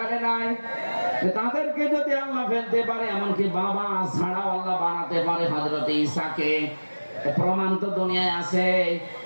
নাই। তাদেরকে যদি আল্লাহ ফেলতে পারে, এমনকি বাবা ছাড়াও আল্লাহ বানাতে পারে হযরত ঈসাকে, প্রমাণ তো দুনিয়ায় আছে।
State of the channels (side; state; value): both; inverted; correlation -1.00